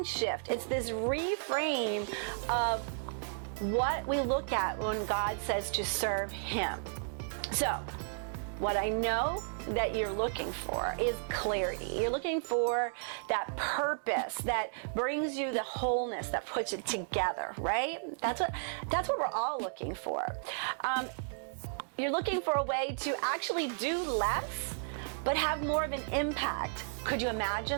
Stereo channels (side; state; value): left; silent; digital silence